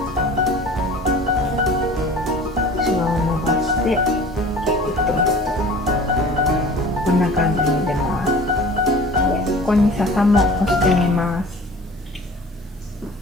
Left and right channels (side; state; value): both; normal; correlation 0.43